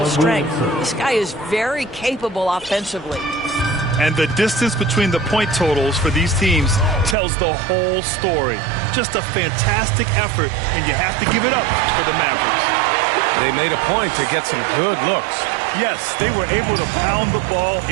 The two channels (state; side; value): drops out; left; at 7.2 s